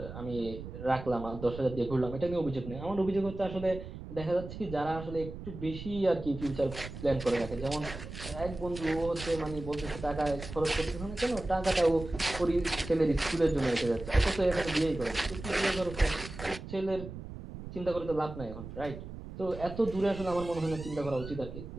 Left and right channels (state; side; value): noise; right; rumble, 11 dB below the sound